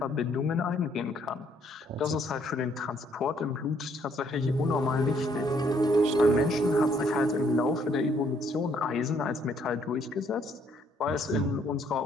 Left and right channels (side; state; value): both; normal; correlation 0.67